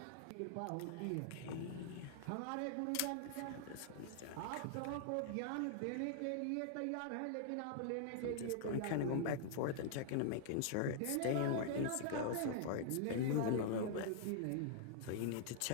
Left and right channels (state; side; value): different; both; correlation -0.01